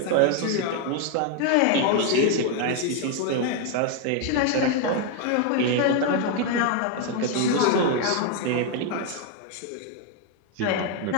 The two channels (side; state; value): both; different; correlation 0.01